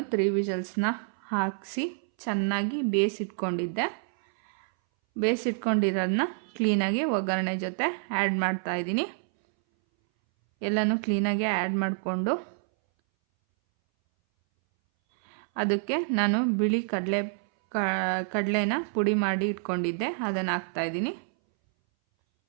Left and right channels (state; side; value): silent; left; 59 dB below the other